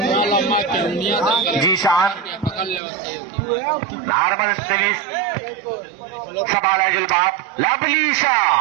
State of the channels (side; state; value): left; drops out; at 2.8 s